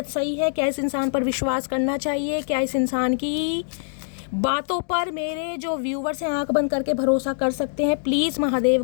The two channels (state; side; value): silent; right; 63 dB below the other